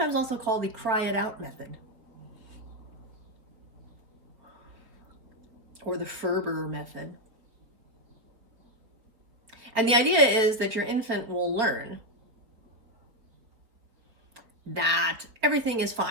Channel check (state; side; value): late; left; 4.4 ms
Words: also called the cry it out method, or the Ferber method. And the idea is that your infant will learn that everything is